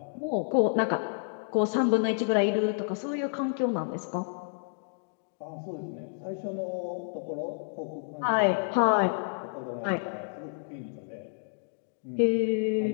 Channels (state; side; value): silent; right; digital silence